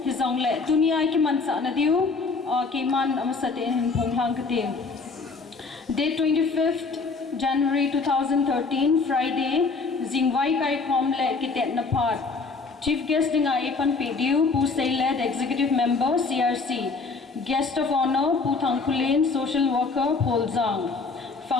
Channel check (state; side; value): quieter; right; 4.3 dB